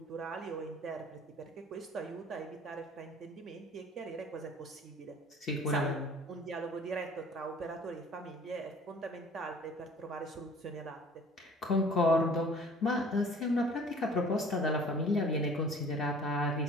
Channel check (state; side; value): normal; both; correlation 0.49